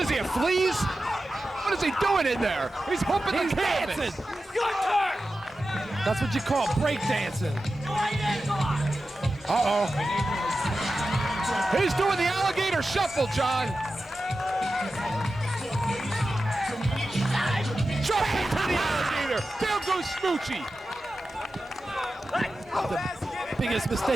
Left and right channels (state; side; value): normal; both; correlation 0.93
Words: is he, a fleas? What is he doing in there? He's humping He's the canvas. dancing. Your turn. That's what you call break dancing. Right in, come on. Uh-oh. He's doing the alligator shuffle, John. Jump into the alligator. Down goes Smoochie. The biggest